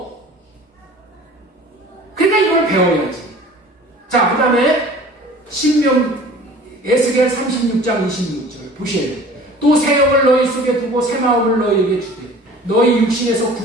그러니까 이걸 배워야지. 자, 그 다음에 에스겔 36장 26절 보셔야 돼요. 또 새 영을 너희 속에 두고 새 마음을 너희에게 주되 너희 육신에서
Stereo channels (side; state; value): both; normal; correlation 0.45